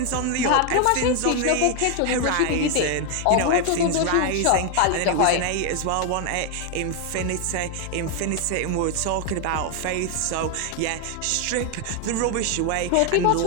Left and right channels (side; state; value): both; different; correlation 0.01